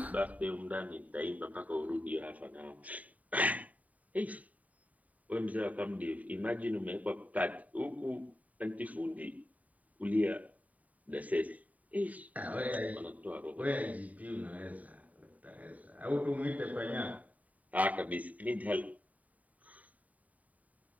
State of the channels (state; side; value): late; left; 0.071 ms